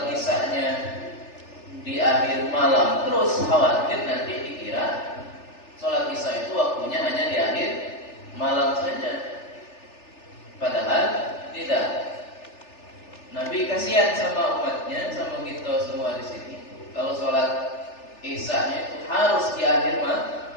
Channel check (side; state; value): right; late; 3.4 ms